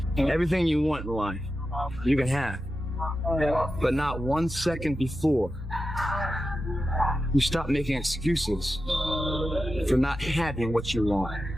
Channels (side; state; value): both; normal; correlation 0.91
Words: Everything you want in life, you can have. But not 1 second before you stop making excuses for not having what you want.